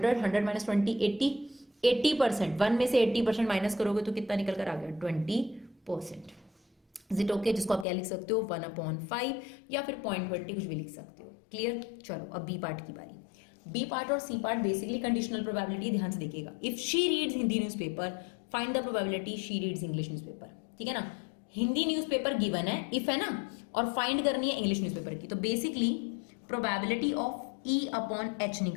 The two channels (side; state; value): right; drops out; at 7.9 s